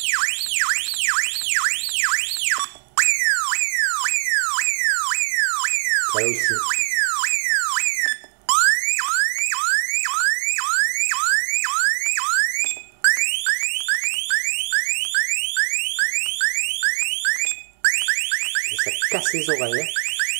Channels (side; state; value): left; silent; digital silence